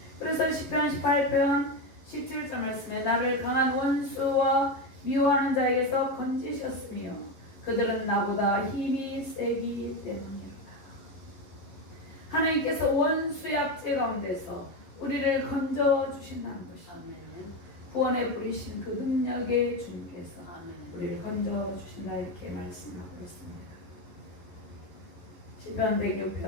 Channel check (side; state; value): right; late; 11 ms